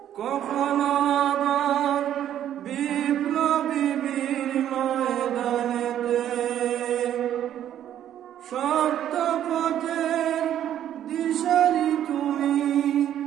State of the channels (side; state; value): left; quieter; 10.9 dB